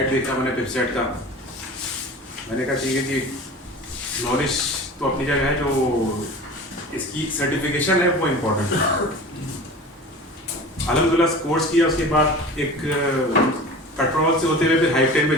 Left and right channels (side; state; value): both; normal; correlation 0.37